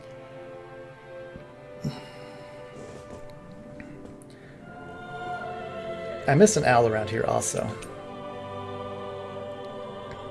I missed an owl around here also.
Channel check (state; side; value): identical; both; correlation 1.00